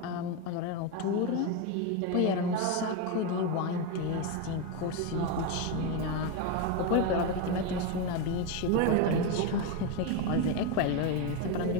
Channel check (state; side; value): different; both; correlation 0.03